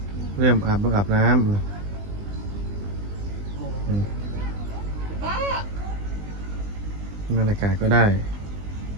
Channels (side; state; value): left; late; 20 ms